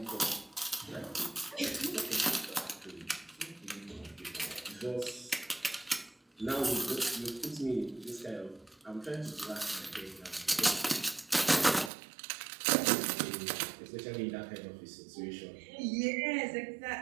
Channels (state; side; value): drops out; left; at 11.9 s